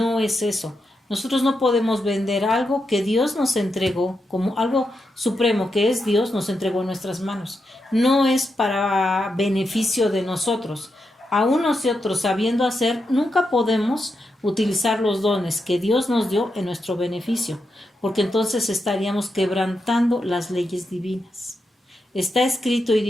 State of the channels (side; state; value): both; normal; correlation 0.85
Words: es eso. Nosotros no podemos vender algo que Dios nos entregó, como algo supremo que es Dios, nos entregó en nuestras manos. No es para beneficio de nosotros. Aún nosotros sabiendo hacer, nunca podemos utilizar los dones que Dios nos dio en nuestro beneficio, porque entonces estaríamos quebrantando las leyes divinas. Está escrito y